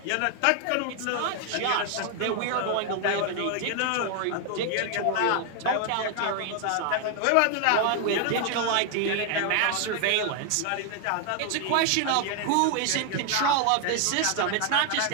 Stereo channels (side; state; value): both; different; correlation 0.00